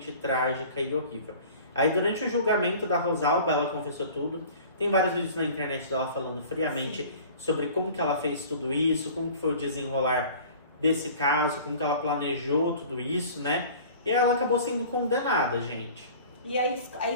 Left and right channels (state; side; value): inverted; both; correlation -0.44